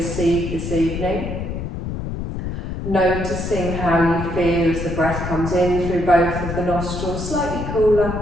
this evening. Noticing how you feel as the breath comes in through both of the nostrils, slightly cooler,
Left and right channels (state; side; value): noise; left; rumble, 5 dB below the sound